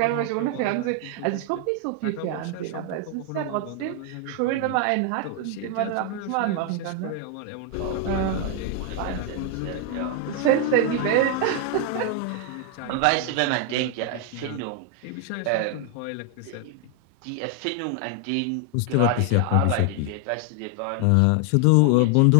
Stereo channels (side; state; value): both; different; correlation 0.00